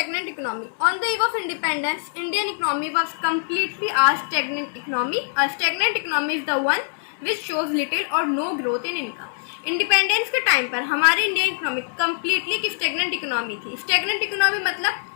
economy. On the eve of independence, Indian economy was completely a stagnant economy. A stagnant economy is the one which shows little or no growth in income. Independence के time पर हमारी Indian economy completely एक stagnant economy थी। Stagnant economy मतलब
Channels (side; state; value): right; silent; 63 dB below the other